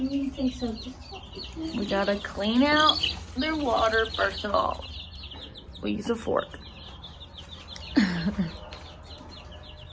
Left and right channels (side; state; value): both; identical; correlation 1.00